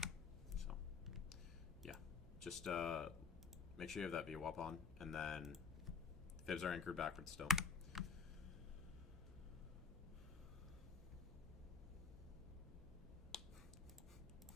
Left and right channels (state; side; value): quieter; right; 5.4 dB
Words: So yeah, just make sure you have that VWAP on, and then fibs are anchored backwards still.